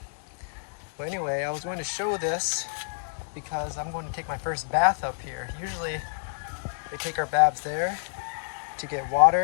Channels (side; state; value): right; silent; digital silence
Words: But anyway, I was going to show this because I'm going to take my first bath up here. Usually we take our baths there to get